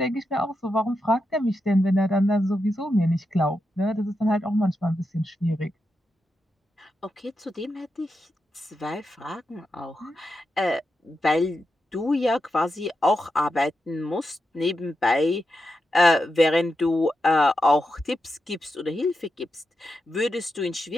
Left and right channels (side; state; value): both; normal; correlation 0.87